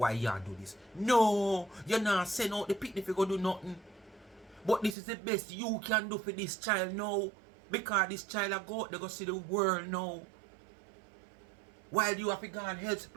you do this? No, you're not send out the picnic if you go do nothing. But this is the best you can do for this child now. Because this child will go out there go see the world now. While you have to go and help the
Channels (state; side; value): drops out; left; at 5.0 s